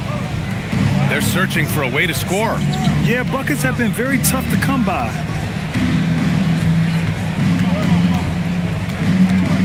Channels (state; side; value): identical; both; correlation 1.00